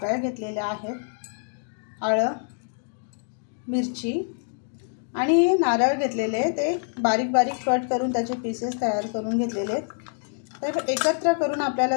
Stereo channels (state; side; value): silent; right; digital silence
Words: घेतलेल्या आहेत, आलं, मिरची आणि नारळ घेतलेले, ते बारीक बारीक कट करून त्याचे पीसेस तयार करून घेतलेले आहेत। तर एकत्र करून